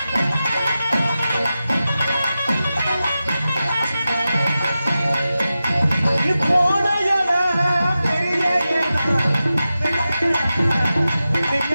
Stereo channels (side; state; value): both; inverted; correlation -0.93